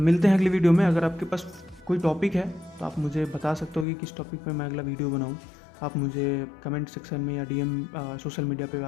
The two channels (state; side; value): drops out; right; at 3.9 s